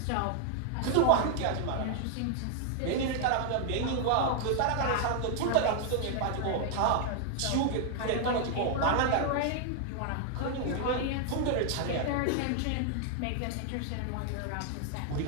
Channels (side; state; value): both; different; correlation 0.00